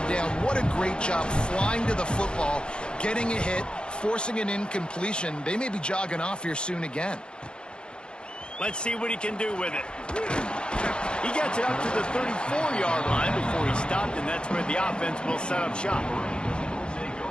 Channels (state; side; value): late; right; 0.052 ms